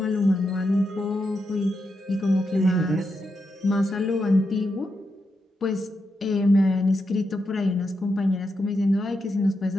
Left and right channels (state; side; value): normal; both; correlation 0.85